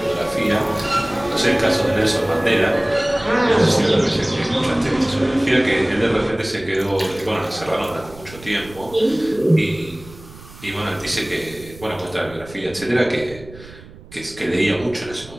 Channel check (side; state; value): right; noise; rumble, 19 dB below the sound